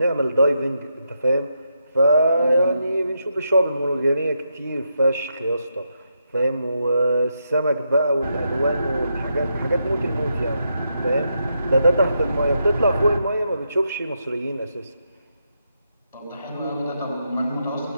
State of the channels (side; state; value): both; inverted; correlation -0.82